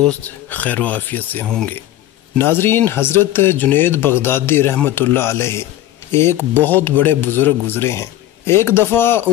خیر و عافیت سے ہوں گے۔ ناظرین، حضرت جنید بغدادی رحمۃ اللہ علیہ ایک بہت بڑے بزرگ گزرے ہیں۔ ایک دفعہ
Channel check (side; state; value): right; quieter; 13.7 dB